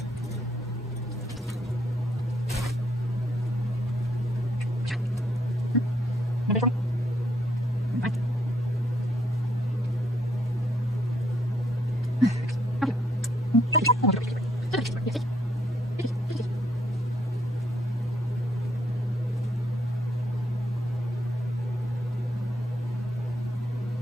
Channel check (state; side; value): normal; both; correlation 0.73